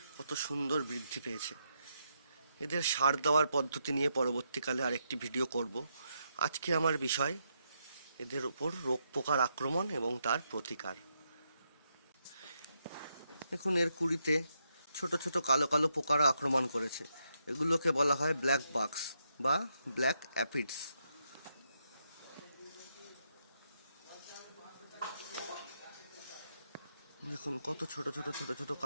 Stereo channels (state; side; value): inverted; both; correlation -0.80